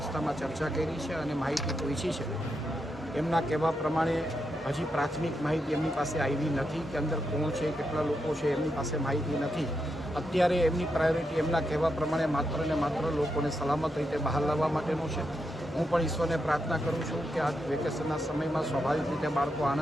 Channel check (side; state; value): both; normal; correlation 0.84